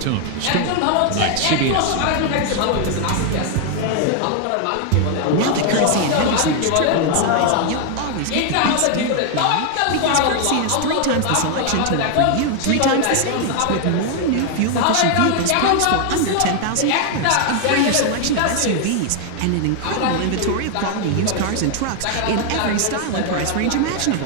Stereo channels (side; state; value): both; different; correlation 0.00